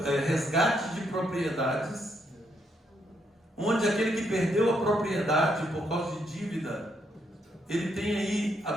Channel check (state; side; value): normal; both; correlation 0.76